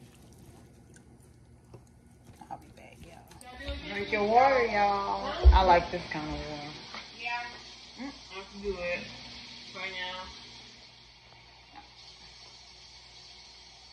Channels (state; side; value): identical; both; correlation 1.00